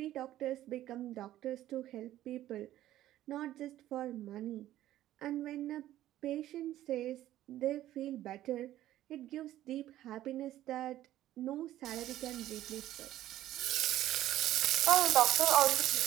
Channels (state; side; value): quieter; left; 13.7 dB